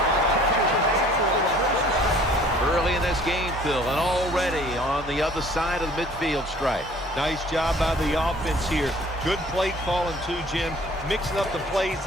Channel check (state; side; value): normal; both; correlation 0.53